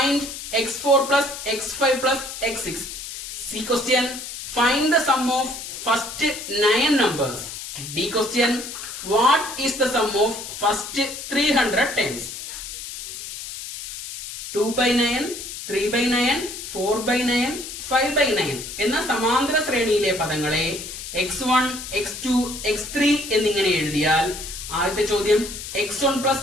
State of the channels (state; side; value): noise; left; hiss, 9 dB below the sound